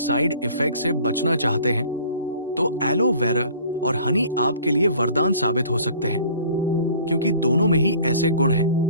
इफेक्ट से बचना चाहते हैं, तो एलोवेरा और हनी आपके लिए वरदान साबित हो सकते हैं, क्योंकि दोनों में ही ऐसे गुण हैं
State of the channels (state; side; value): inverted; both; correlation -0.50